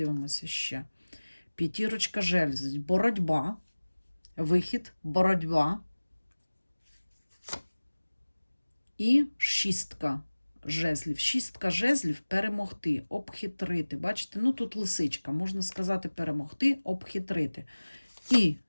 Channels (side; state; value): both; inverted; correlation -1.00